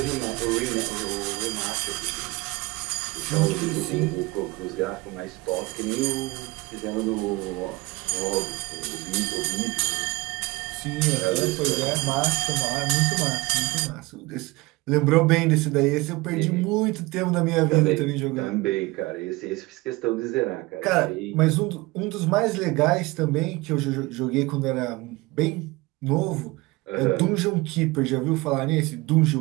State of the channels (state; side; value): quieter; left; 22.4 dB